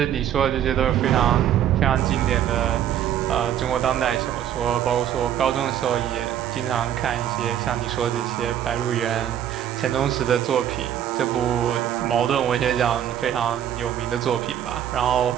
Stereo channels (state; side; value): quieter; left; 10.4 dB